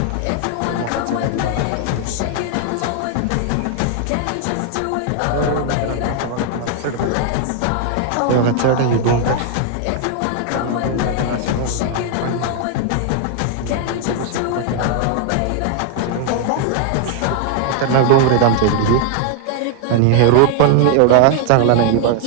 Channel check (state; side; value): different; both; correlation 0.00